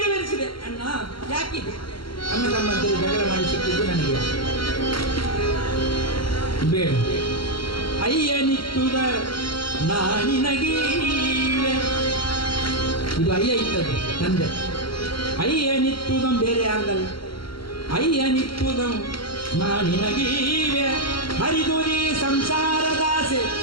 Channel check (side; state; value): right; late; 0.73 ms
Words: ಅಣ್ಣ. ಯಾಕಿದೆ? ಅಣ್ಣ ತಮ್ಮಂತರು ಜಗಳ ಮಾಡಿ ಸಿಕ್ಕಿದ್ದು ನನಗೆ ಬೇಡ. ಅಯ್ಯನಿತ್ತುದ ನಾನಿನಗೀವೆ. ಇದು ಅಯ್ಯ ಇತ್ತದು ತಂದೆ. ಅಯ್ಯನಿತ್ತುದಂ ಬೇರೆ ಯಾರ್ದಲ್ಲ. ಅಯ್ಯನಿತ್ತುದಂ ನಾನಿನಗೀವೆ, ಹರಿದುರಿ ಸಂಸಾರದಾಸೆ